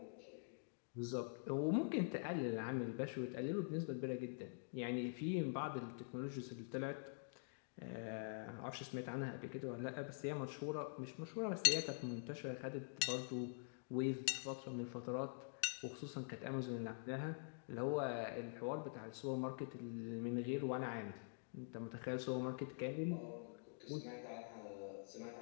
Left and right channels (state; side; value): silent; right; digital silence